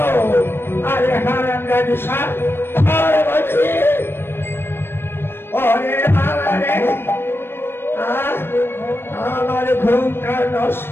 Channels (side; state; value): right; late; 0.11 ms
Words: আরে হারাম জাতি সব আর বলছি। ওরে বাবা রে, আমার ঘুমটা